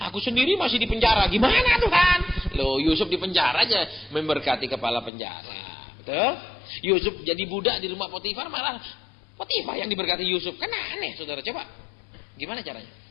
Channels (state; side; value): drops out; right; at 5.1 s